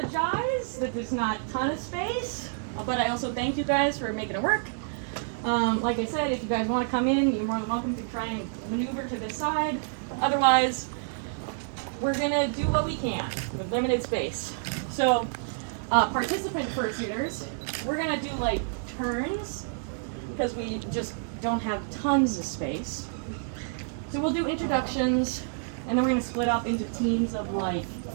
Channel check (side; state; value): left; silent; digital silence